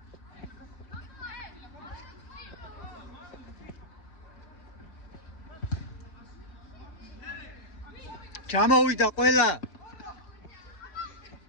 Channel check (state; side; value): late; right; 5.0 ms